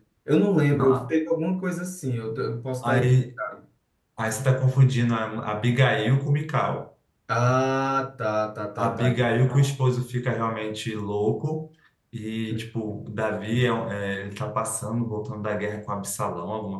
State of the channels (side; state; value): both; identical; correlation 1.00